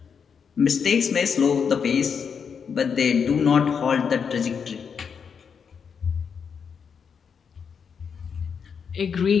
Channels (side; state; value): right; quieter; 6.5 dB